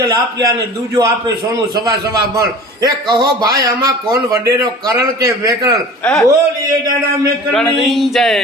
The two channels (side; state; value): both; normal; correlation 0.41